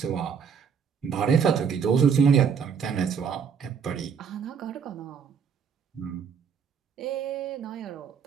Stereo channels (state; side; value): quieter; left; 6.8 dB